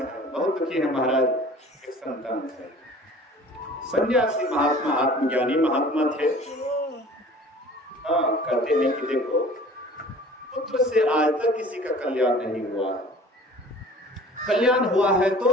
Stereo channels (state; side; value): normal; both; correlation 0.46